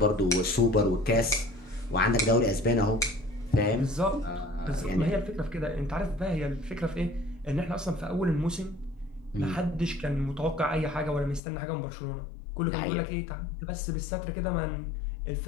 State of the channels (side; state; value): right; drops out; at 11.4 s